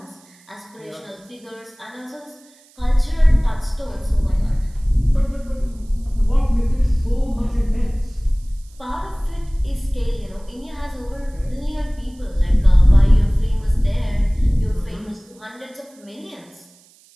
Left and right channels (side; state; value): right; noise; hiss, 29 dB below the sound